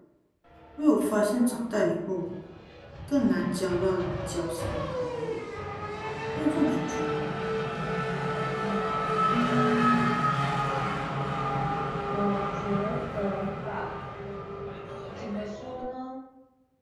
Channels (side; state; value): both; identical; correlation 1.00